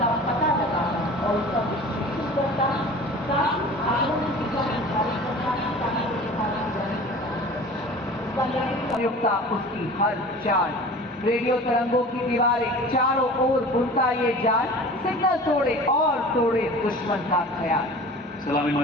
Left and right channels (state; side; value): normal; both; correlation 0.40